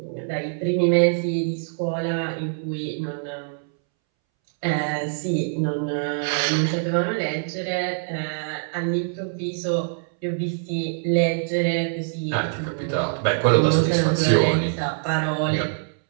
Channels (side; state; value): left; silent; 63 dB below the other